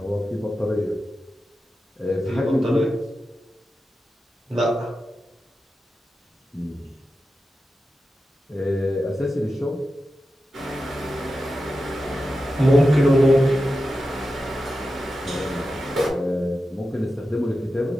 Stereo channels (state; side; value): normal; both; correlation 0.91